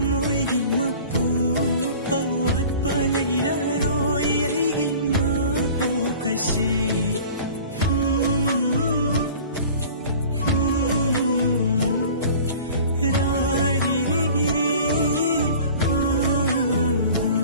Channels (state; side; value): inverted; both; correlation -0.43